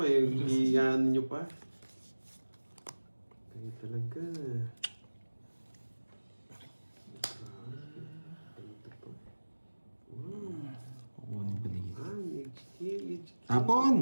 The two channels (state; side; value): inverted; both; correlation -1.00